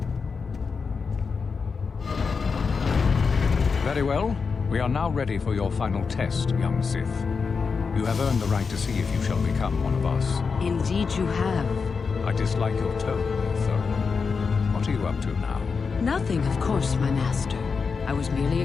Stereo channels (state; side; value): quieter; right; 5.2 dB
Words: Very well. We are now ready for your final test, young Sith. You have earned the right to see if you shall become one of us. Indeed you have. I dislike your tone, though. What are you up to now? Nothing, of course, my master. I was merely